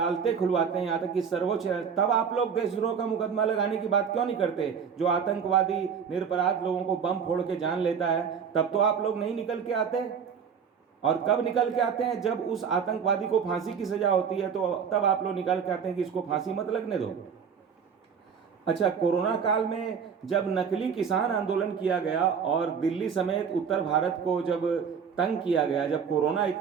खुलवाते हैं, यहाँ तक कि सर्वोच्च, तब आप लोग देशद्रोह का मुकदमा लगाने की बात क्यों नहीं करते? जो आतंकवादी निरपराध लोगों को बम फोड़ के जान लेता है, तब तो आप लोग नहीं निकल के आते। और कब निकल के आते हैं? जब उस आतंकवादी को फांसी की सजा होती है, तो तब आप लोग निकल के आते हैं कि इसको फांसी मत लगने दो। अच्छा, कोरोना काल में जब नकली किसान आंदोलन किया गया और दिल्ली समेत उत्तर भारत को जब तंग किया गया, जब कोरोना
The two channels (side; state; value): left; quieter; 6.8 dB